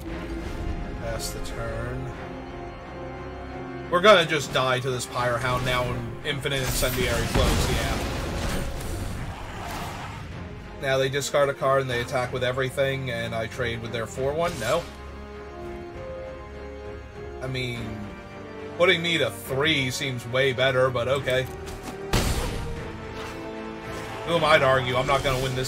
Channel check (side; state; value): both; identical; correlation 1.00